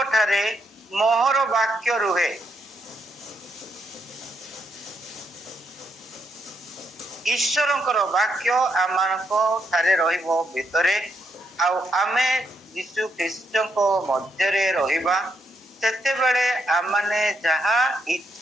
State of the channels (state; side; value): normal; both; correlation 0.79